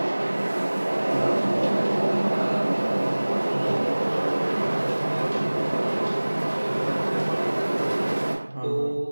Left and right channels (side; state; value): both; inverted; correlation -1.00